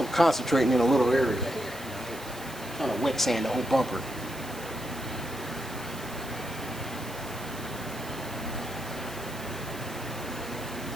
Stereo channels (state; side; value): noise; right; hiss, 15 dB below the sound